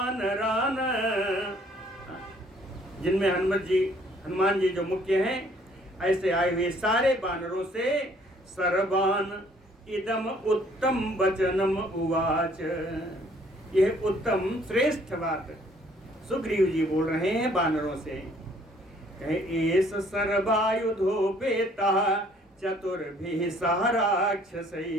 जिनमें हनुमान जी जो मुख्य हैं, ऐसे आए हुए सारे वानरों से सर्वान इदम उत्तम वचनम उवाच, यह उत्तम श्रेष्ठ बात सुग्रीव जी बोल रहे हैं वानरों से। एष सर्वायुधोपेतः चतुर्भिः सह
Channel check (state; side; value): normal; both; correlation 0.60